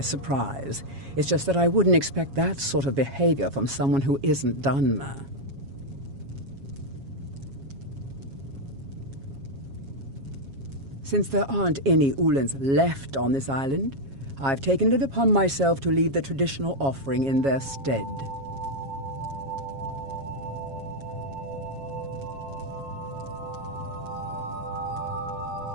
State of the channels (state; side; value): late; left; 7.3 ms